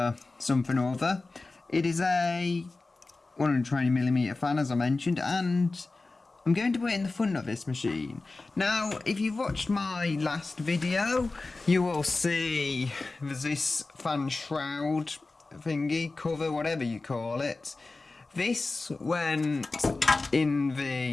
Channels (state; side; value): quieter; right; 3.5 dB